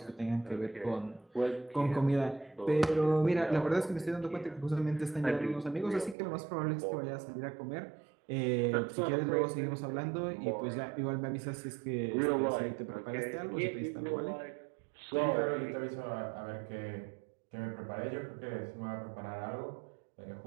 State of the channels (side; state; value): left; drops out; at 6.2 s